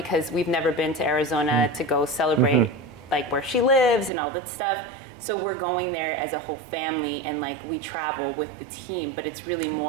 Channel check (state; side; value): drops out; left; at 4.1 s